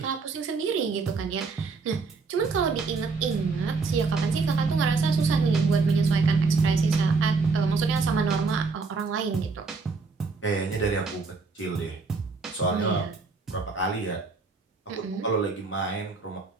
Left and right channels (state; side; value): quieter; left; 4.4 dB